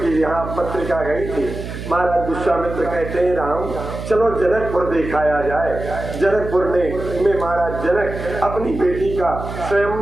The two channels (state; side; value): noise; right; hum, 8 dB below the sound